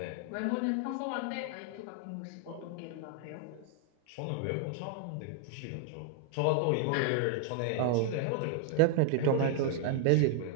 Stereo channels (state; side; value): different; both; correlation 0.00